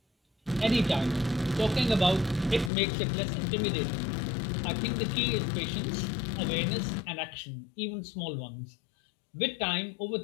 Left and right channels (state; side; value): drops out; right; at 2.7 s